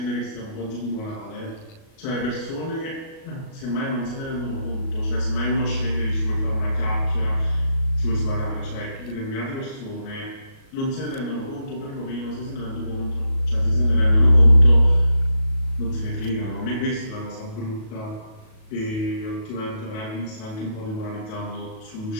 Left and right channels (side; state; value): right; late; 37 ms